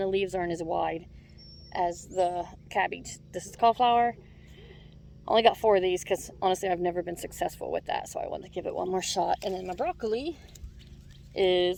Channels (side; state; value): both; identical; correlation 1.00